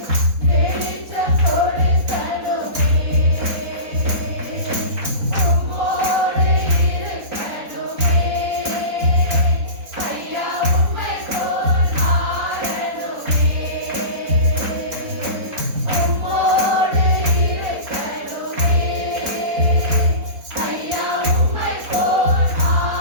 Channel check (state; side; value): late; left; 4.1 ms